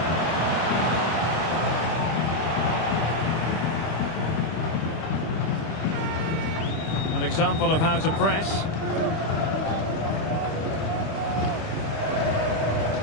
An example of how to press.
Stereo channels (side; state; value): right; late; 25 ms